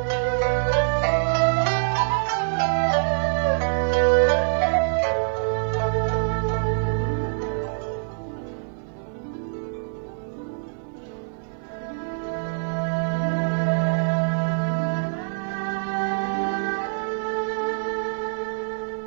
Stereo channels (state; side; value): silent; left; digital silence